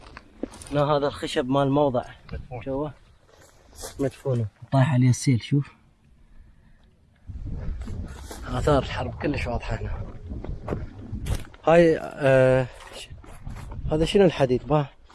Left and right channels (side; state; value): both; identical; correlation 1.00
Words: هنا هذا الخشب مال موضع مدفون. شوفه مدفونه طايح عليه السيل. شوف آثار الحرب كلش واضحة هنا. هاي هذا شنو الحديد؟ باه